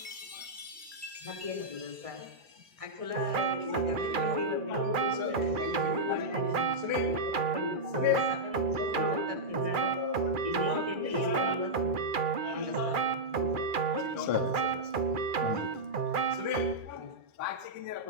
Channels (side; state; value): left; late; 2.4 ms